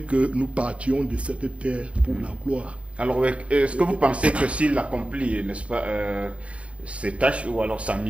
que nous partions de cette terre pour la gloire. Alors, est-ce que vous pensez que s'il accomplit, n'est-ce pas, ses tâches ou alors sa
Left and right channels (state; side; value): late; left; 0.063 ms